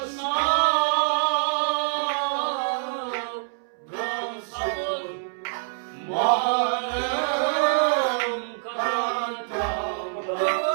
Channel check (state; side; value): silent; left; 61 dB below the other